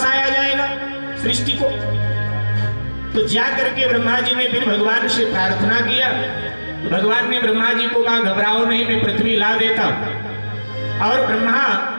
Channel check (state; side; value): inverted; both; correlation -1.00